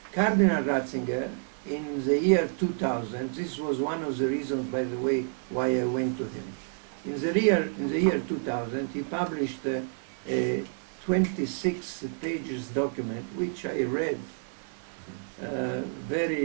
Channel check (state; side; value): silent; left; 58 dB below the other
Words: Cardinal Ratzinger, in the year 2000, this was one of the reasons, by the way, why I went to him. In the year 2000, he published a 26 pages document, which I read,